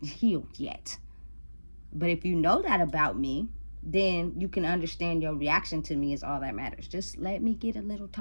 healed yet. But if you know that about me, then you can understand your reaction to me is all that matters. Just let me get a little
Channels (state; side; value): inverted; both; correlation -1.00